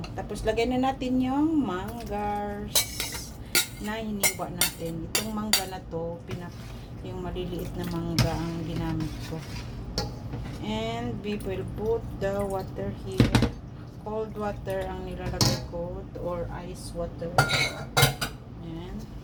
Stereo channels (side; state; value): both; identical; correlation 1.00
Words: Tapos, lagay na natin yung manggars na hiniwa natin. Itong mangga na to, yung maliliit na mangga ang ginamit ko. And we will put the water here. Cold water ang nilalagay ko or ice water. Yan.